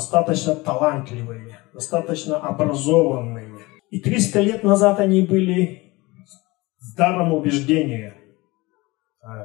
талантливые, достаточно образованные. И 300 лет назад они были с даром убеждения.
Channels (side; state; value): right; quieter; 22.5 dB